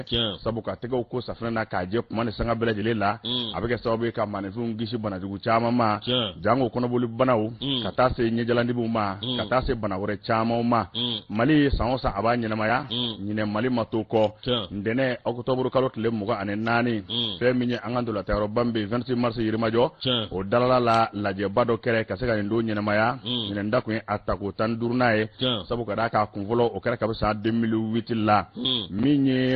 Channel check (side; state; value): both; identical; correlation 1.00